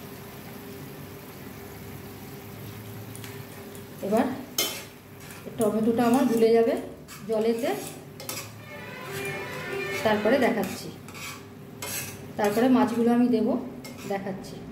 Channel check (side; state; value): both; identical; correlation 1.00